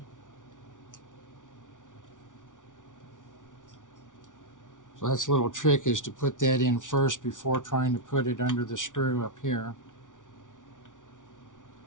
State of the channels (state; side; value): late; right; 0.87 ms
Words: So that's a little trick, is to put that in first before trying to put it under the screw up here.